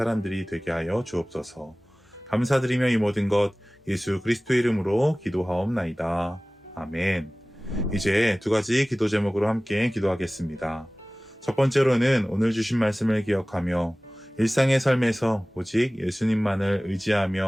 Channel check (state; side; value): normal; both; correlation 0.98